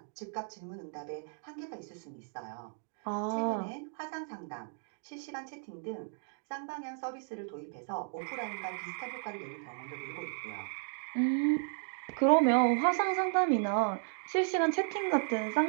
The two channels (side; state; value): left; silent; 55 dB below the other